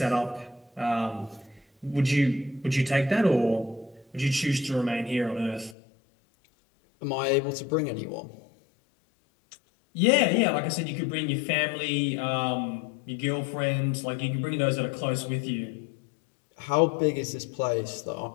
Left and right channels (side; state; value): right; drops out; at 5.8 s